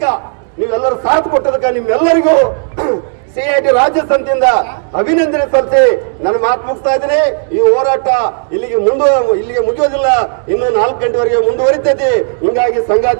ನೀವೆಲ್ಲರೂ ಸಾಥ್ ಕೊಟ್ಟದಕ್ಕ ನಿಮ್ಮೆಲ್ಲರಿಗೂ CIT ರಾಜ್ಯ ಸಮಿತಿಯಿಂದ ಅಭಿನಂದನೆ ಸಲ್ಲಿಸಿ ನನ್ನ ಮಾತು ಮುಗಿಸ್ತಾ ಇದ್ದೀನಿ. ಈ ಹೋರಾಟ ಇಲ್ಲಿಗೆ ಮುಗಿಯೋದಿಲ್ಲ, ಇನ್ನು 4 ಗಂಟೆವರೆಗೆ ಮುಂದುವರಿತೈತಿ. ಹಿಂಗಾಗಿ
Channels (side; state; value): left; silent; 65 dB below the other